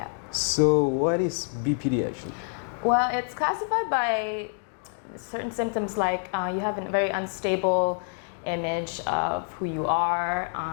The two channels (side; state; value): right; silent; 57 dB below the other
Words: So what is BPD actually? Well, it's classified by certain symptoms like you have a very unstable image of who you are.